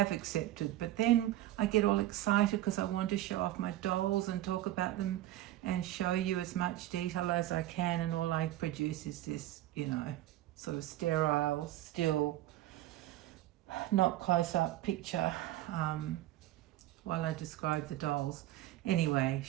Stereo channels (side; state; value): left; quieter; 14.4 dB